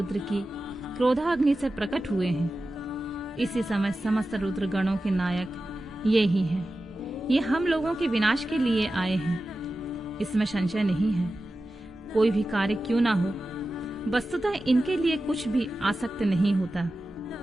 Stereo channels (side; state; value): both; normal; correlation 0.93